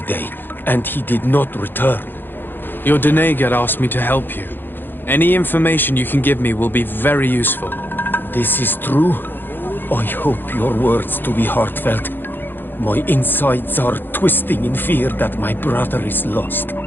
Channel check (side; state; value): right; late; 0.097 ms